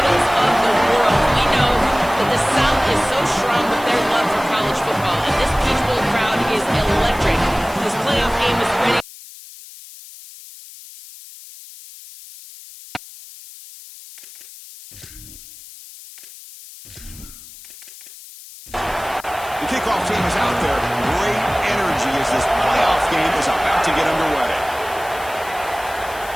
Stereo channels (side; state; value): left; noise; hiss, 17 dB below the sound